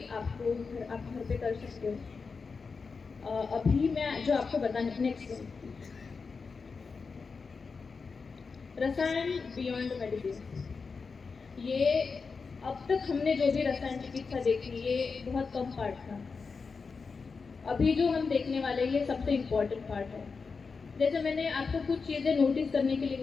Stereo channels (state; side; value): quieter; right; 4.9 dB